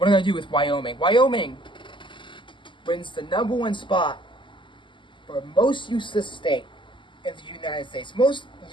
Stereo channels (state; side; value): late; right; 0.24 ms